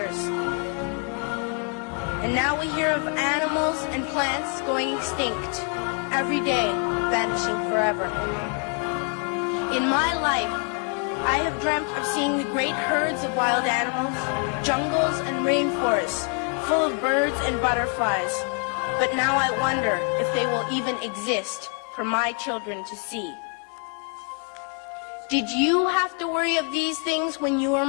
And now we hear of animals and plants going extinct, every day vanishing forever. In my life, I have dreamt of seeing the great herds of wild animals, jungles and rainforests full of birds and butterflies. But now I wonder if they will even exist for my children to see. Did you have to worry of these things when you were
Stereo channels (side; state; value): right; quieter; 37.0 dB